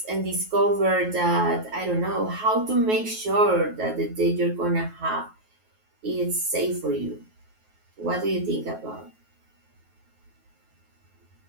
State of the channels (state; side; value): late; left; 9.3 ms